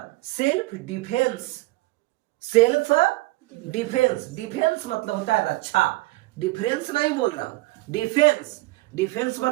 Self defence, self defence, defence मतलब होता है रक्षा, डिफरेंस नहीं बोल रहा हूं, डिफेंस, डिफेंस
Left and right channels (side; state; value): left; quieter; 20.9 dB